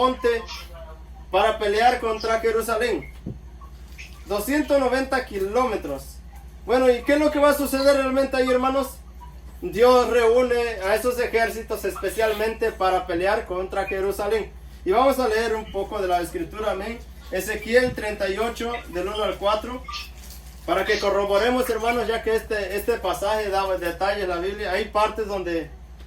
para pelear contra Jerusalén. 290 kilómetros. Bueno, ¿y qué es lo que va a suceder realmente ahí, hermanos? Dios reúne a esos ejércitos especialmente para pelear contra Jerusalén. Y vamos a leer un poco de la escritura, amén. Ezequiel 38, del 1 al 4. Para que corroboremos, hermanos, ya que este pasaje da detalles en la Biblia. Hay partes donde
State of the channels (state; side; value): identical; both; correlation 1.00